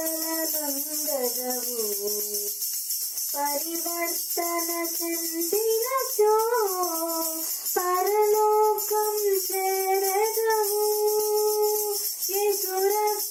నందగవు, పరివర్తన చెందినచో పరలోకం చేరగవు. యేసు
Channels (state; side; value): identical; both; correlation 1.00